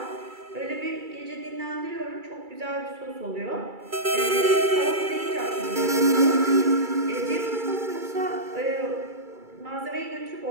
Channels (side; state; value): left; late; 2.3 ms